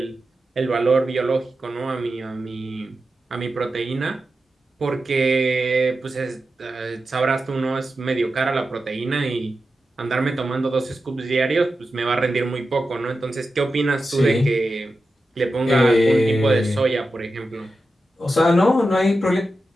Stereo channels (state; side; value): normal; both; correlation 0.91